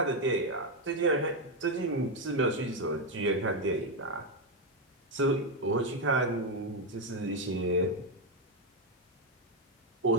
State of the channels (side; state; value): both; normal; correlation 0.06